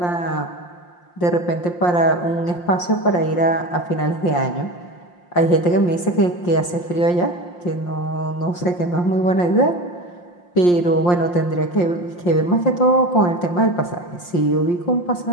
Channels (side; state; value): right; late; 5.7 ms